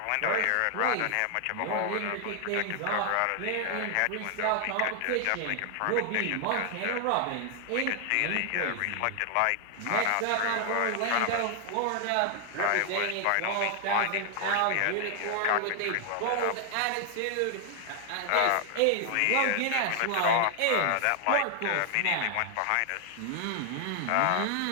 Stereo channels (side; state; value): both; different; correlation 0.00